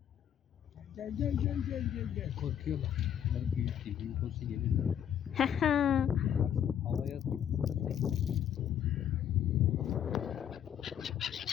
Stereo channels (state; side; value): quieter; right; 9.6 dB